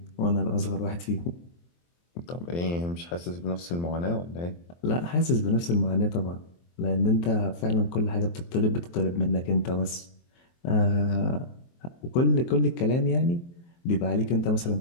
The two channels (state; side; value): late; right; 23 ms